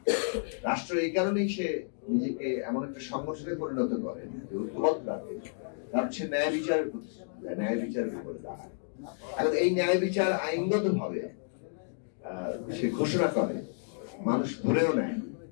রাষ্ট্র এই কারণেই সে নিজেকে এমন একটা সংগঠনে পরিণত করে যে ঐক্যবদ্ধ রাখে, কারণ সে ন্যায় বিচারের প্রতিশ্রুতি দেয়, ন্যায় বিচারের উপরে দাঁড়ায়। এখন এই ন্যায় বিচার আইনগত ভাবে সে ঘোষণা করে, মানুষ ধরেও নেয়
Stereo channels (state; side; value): silent; right; digital silence